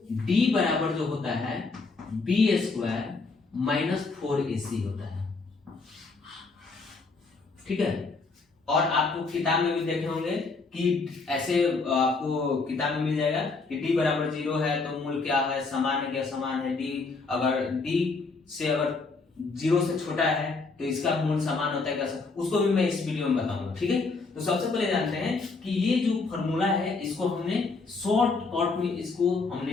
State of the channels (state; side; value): quieter; right; 4.1 dB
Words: d बराबर जो होता है बी स्क्वायर माइनस 4ac होता है। ठीक है, और आपको किताब में भी देखे होंगे कि ऐसे आपको किताब में मिल जाएगा कि d बराबर 0 है तो मूल क्या है, समान है क्या, समान है। d अगर d से अगर जीरो से छोटा है तो इसका मूल समान होता है कैसे, उसको भी मैं इस वीडियो में बताऊंगा। ठीक है, तो सबसे पहले जानते हैं कि ये जो फॉर्मूला है इसको हमने शॉर्ट कट में इसको